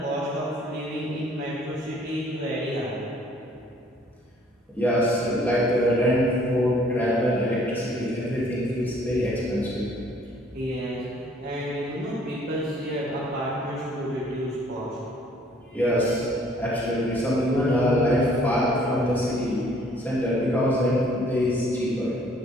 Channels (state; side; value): normal; both; correlation 0.59